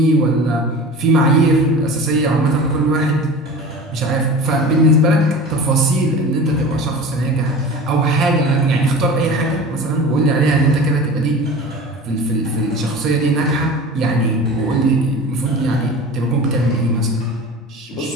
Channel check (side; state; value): both; normal; correlation 0.35